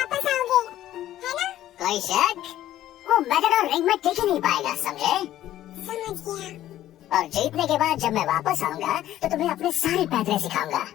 आओगे, है ना? कोई शक? वो मैटाडोर रिंग में टिक ही नहीं पाएगा, समझे? समझ गया। और जीतने के बाद जब मैं वापस आऊंगा तो तुम्हें अपने सारे पैतरे सिखाऊंगा,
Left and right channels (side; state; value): right; quieter; 13.2 dB